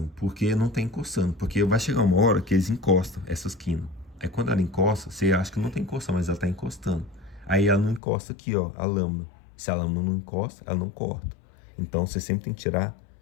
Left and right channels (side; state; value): right; drops out; at 8.0 s